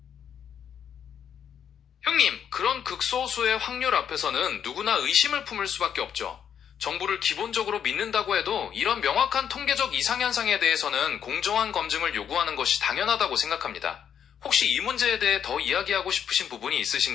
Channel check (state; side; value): quieter; right; 8.5 dB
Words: 형님, 그런 극소수의 확률 앞에서는 누구나 의심을 품을 수밖에 없죠. 정부를 기본적으로 믿는다고 해도 이런 명확한 통계적 이상현상에 대해서는 공정한 검증을 요구하는 것이 당연하다고 생각합니다. 혹시 이 문제에 대해 더 이야기하고 싶으신 부분이